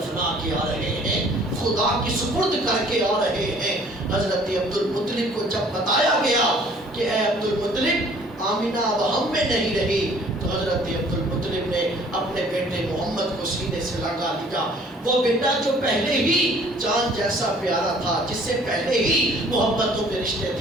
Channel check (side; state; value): both; normal; correlation 0.55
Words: کے آ رہے ہیں، خدا کی سپرد کر کے آ رہے ہیں۔ حضرت عبد المطلب کو جب بتایا گیا کہ اے عبد المطلب، آمنہ اب ہم میں نہیں رہی، تو حضرت عبد المطلب نے اپنے بیٹے محمد کو سینے سے لگا لیا۔ وہ بیٹا جو پہلے ہی چاند جیسا پیارا تھا، جس سے پہلے ہی محبتوں کے رشتے